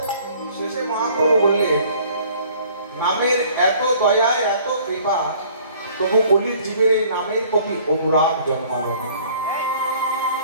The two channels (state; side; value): inverted; both; correlation -0.54